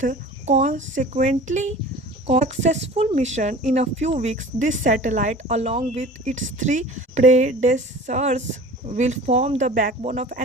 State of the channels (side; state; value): both; normal; correlation 0.41